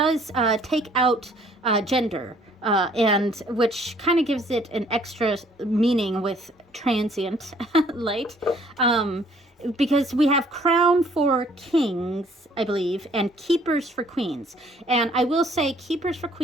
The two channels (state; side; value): normal; both; correlation 0.60